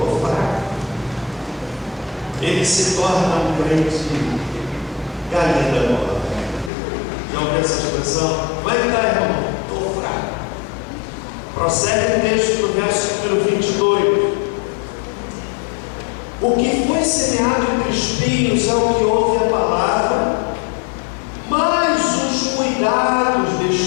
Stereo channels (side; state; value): right; drops out; at 6.7 s